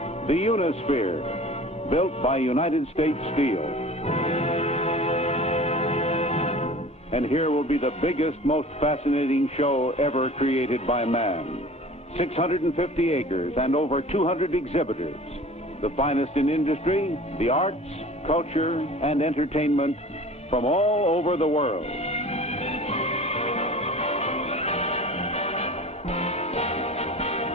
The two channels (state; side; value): normal; both; correlation 0.42